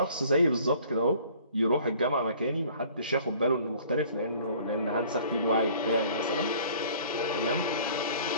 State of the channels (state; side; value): inverted; both; correlation -0.53